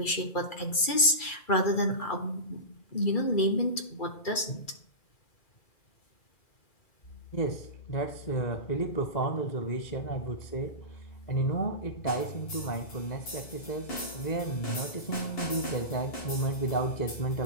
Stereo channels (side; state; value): right; late; 2.3 ms